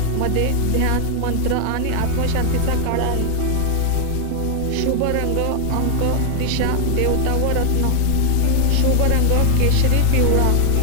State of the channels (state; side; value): different; both; correlation 0.00